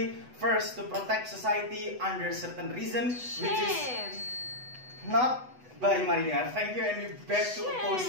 first to protect society under certain reason, which is not by marijuana. Thank you, and we beg to oppose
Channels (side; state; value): left; late; 8.0 ms